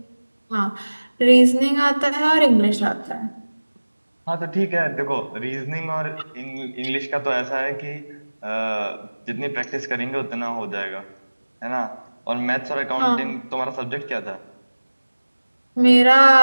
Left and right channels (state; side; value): inverted; both; correlation -1.00